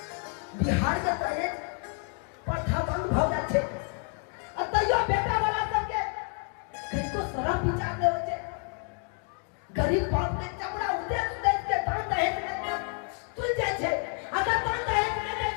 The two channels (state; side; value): quieter; right; 37.2 dB